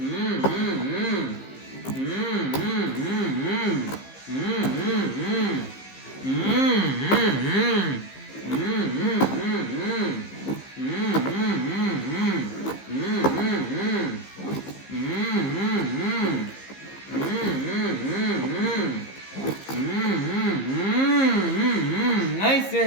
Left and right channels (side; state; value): right; late; 15 ms